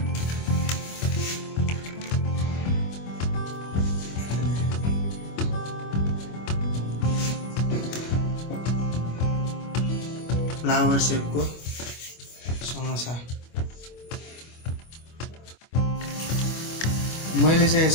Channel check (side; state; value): right; late; 25 ms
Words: फ्लावर सेपको समोसा। मैले चाहिँ